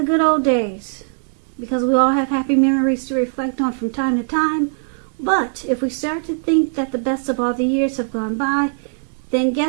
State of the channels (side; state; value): left; silent; digital silence